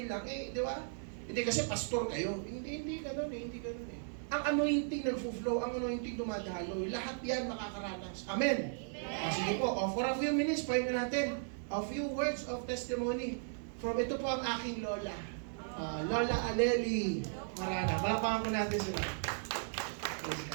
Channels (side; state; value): left; silent; digital silence